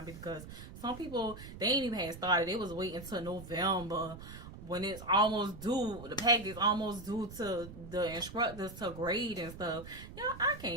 because some people, they ain't even had started. They was waiting until November when it's almost due. The package is almost due to the instructors to grade and stuff. I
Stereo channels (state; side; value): noise; right; rumble, 13 dB below the sound